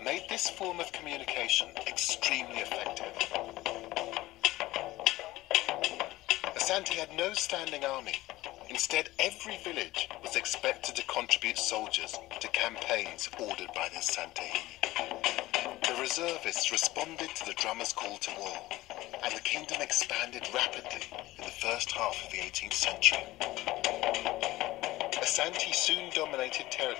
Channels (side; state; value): right; quieter; 17.6 dB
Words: made this form of communication extremely effective. Asante had no standing army. Instead, every village was expected to contribute soldiers to campaigns ordered by the Asante. The reservists responded to the drummer's call to war, and the kingdom expanded rapidly in the first half of the 18th century. Asante soon dominated